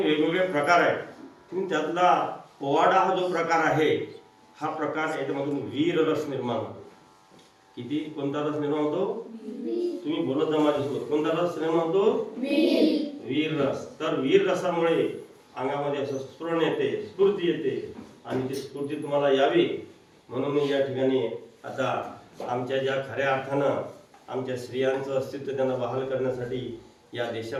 वेगवेगळे प्रकार आहेत. त्यातला पोवाडा हा जो प्रकार आहे हा प्रकार याच्यामधून वीर रस निर्माण होतो. किती? कोणता रस निर्माण होतो? तुम्ही बोलत जा माझ्यासोबत. कोणता रस निर्माण होतो? वीर रस. तर वीर रसामुळे अंगामध्ये असं स्फुरण येते, स्फूर्ती येते आणि ती स्फूर्ती तुम्हाला यावी म्हणून मी या ठिकाणी आता आमच्या ज्या खऱ्या अर्थानं आमच्या स्त्रियांचं अस्तित्व त्यांना बहाल करण्यासाठी या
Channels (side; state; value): both; identical; correlation 1.00